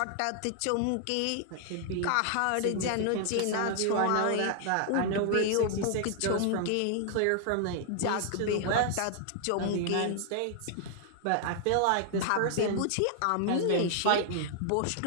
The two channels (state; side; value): different; both; correlation 0.00